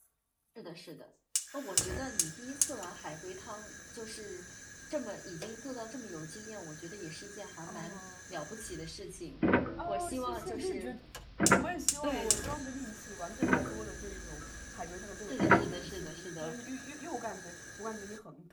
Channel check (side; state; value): both; identical; correlation 1.00